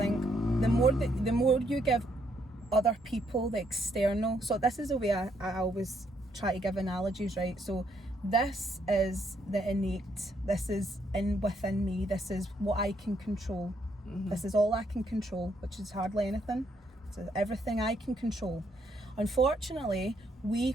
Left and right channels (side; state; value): both; normal; correlation 0.73